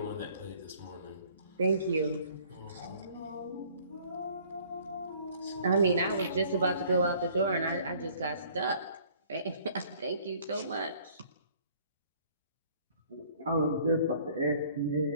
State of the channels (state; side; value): inverted; both; correlation -0.56